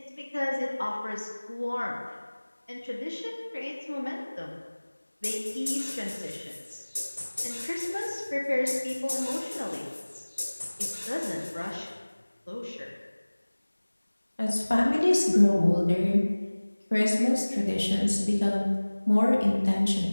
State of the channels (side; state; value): both; inverted; correlation -1.00